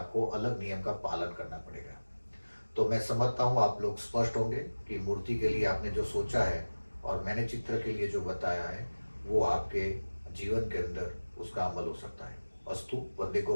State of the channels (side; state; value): both; inverted; correlation -1.00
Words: अलग नियम का पालन करना पड़ेगा। तो मैं समझता हूँ आप लोग स्पष्ट होंगे कि मूर्ति के लिए आपने जो सोचा है और मैंने चित्र के लिए जो बताया है वो आपके जीवन के अंदर उसका अमल हो सकता है। अस्तु। वंदे गो